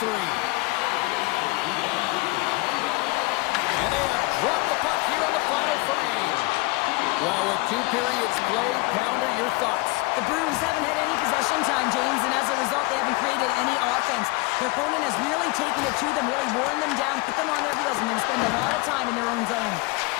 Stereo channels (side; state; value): right; quieter; 24.0 dB